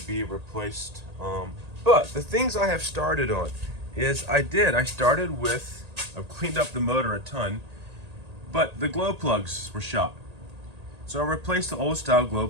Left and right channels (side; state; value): left; late; 1.8 ms